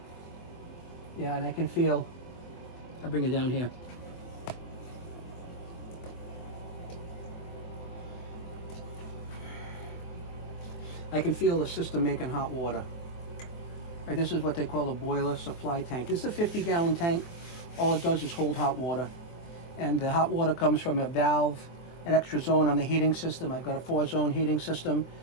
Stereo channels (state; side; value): late; right; 24 ms